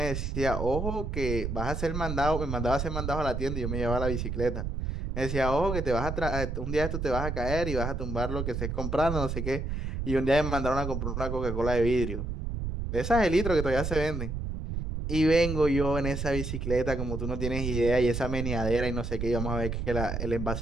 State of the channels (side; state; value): right; noise; rumble, 3 dB below the sound